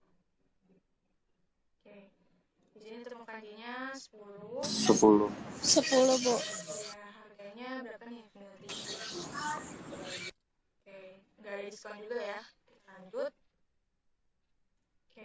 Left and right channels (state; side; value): identical; both; correlation 1.00